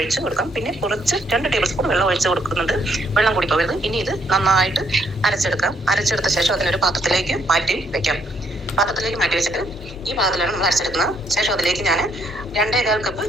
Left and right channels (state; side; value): normal; both; correlation 0.71